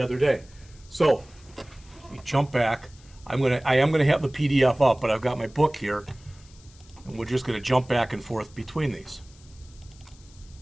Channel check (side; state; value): left; noise; hiss, 26 dB below the sound